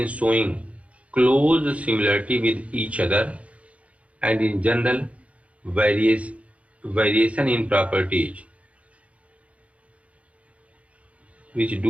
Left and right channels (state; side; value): late; left; 0.064 ms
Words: showing close similarity with each other and in general variation in properties which